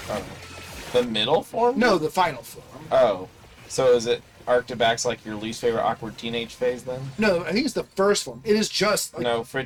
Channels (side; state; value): both; identical; correlation 1.00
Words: Oh. The middle form? No, the final form. Oh. So is it Arctibax like your least favorite awkward teenage phase then? No, I think it's the first form. It is just... Like, No,